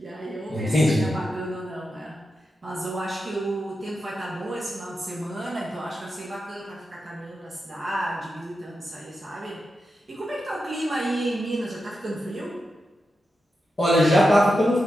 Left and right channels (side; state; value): both; normal; correlation 0.89